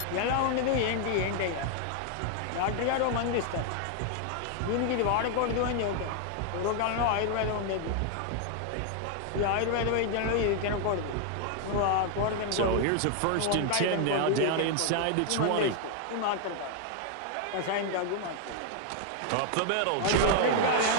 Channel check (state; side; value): different; both; correlation 0.00